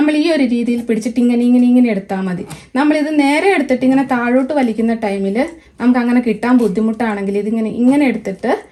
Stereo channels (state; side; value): identical; both; correlation 1.00